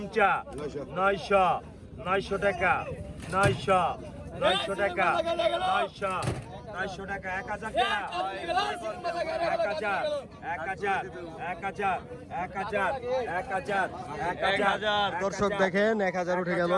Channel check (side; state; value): both; identical; correlation 1.00